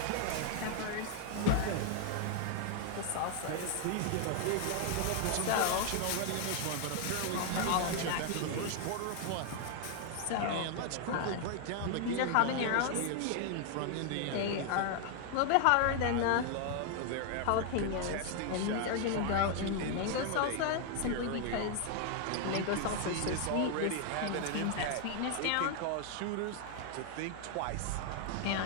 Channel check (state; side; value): different; both; correlation 0.00